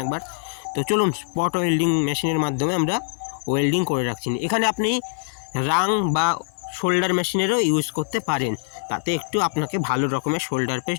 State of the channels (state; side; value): silent; right; 63 dB below the other